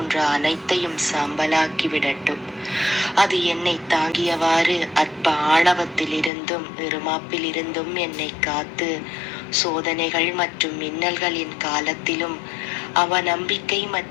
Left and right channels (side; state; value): right; drops out; at 6.3 s